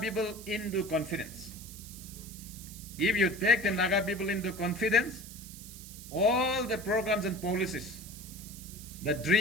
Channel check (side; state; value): right; noise; hiss, 14 dB below the sound